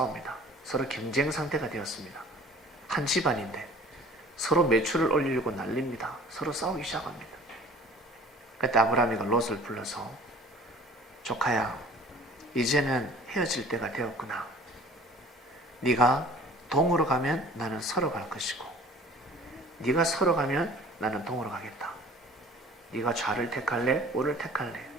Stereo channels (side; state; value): both; normal; correlation 0.48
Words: 서로 경쟁 상태가 되었습니다. 한 집안인데 서로 매출을 올리려고 난립니다. 서로 싸우기 시작합니다. 그때 아브라함이가 롯을 불러서, 조카야, 이제는 헤어질 때가 되었구나. 네가 동으로 가면 나는 서로 갈 것이고, 네가 서로 가면 나는 동으로 가겠다. 네가 좌를 택할래? 우를 택할래?